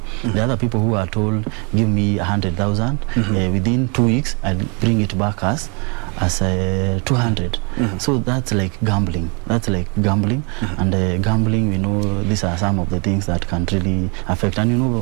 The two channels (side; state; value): left; quieter; 33.6 dB